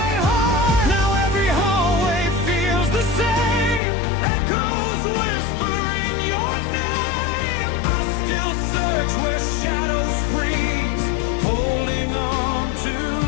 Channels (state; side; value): drops out; right; at 3.8 s